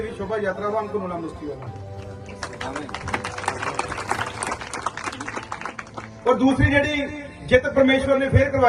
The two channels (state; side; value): identical; both; correlation 1.00